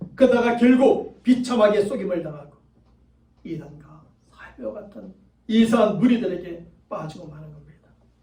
그러다가 결국 비참하게 속임을 당하고 이단과 사이비와 같은 이상한 무리들에게 빠지고 마는 겁니다.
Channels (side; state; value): both; identical; correlation 1.00